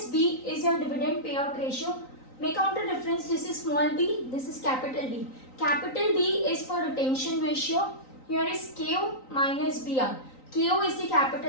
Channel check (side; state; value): right; late; 3.9 ms